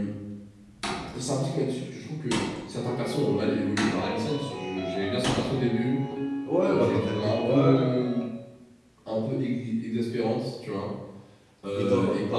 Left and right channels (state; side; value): identical; both; correlation 1.00